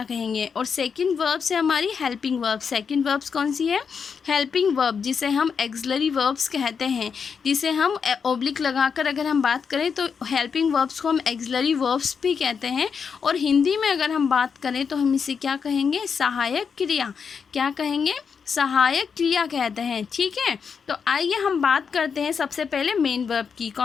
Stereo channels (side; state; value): right; quieter; 6.2 dB